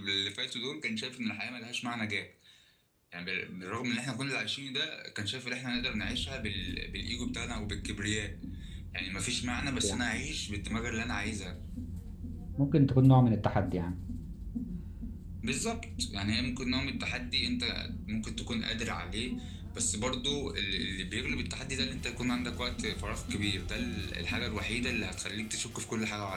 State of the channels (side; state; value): both; identical; correlation 1.00